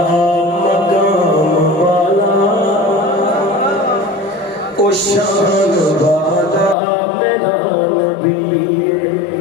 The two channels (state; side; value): drops out; right; at 6.8 s